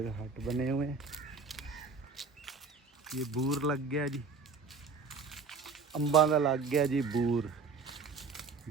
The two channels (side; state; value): left; quieter; 4.8 dB